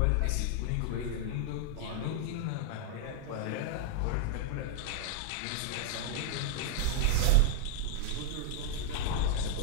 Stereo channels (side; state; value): both; different; correlation 0.00